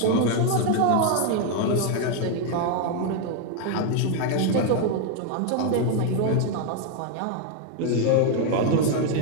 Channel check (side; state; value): both; different; correlation 0.01